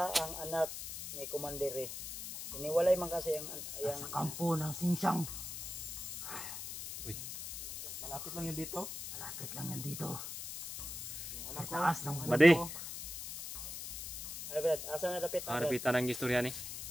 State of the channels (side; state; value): left; noise; hiss, 7 dB below the sound